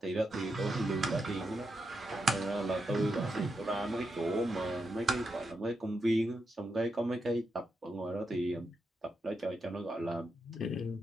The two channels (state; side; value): normal; both; correlation 0.85